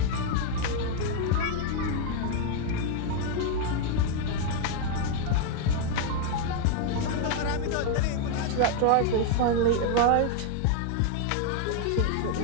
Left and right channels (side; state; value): both; different; correlation 0.01